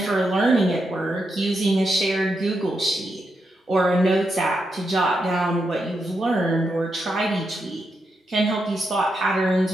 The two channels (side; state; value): both; normal; correlation 0.84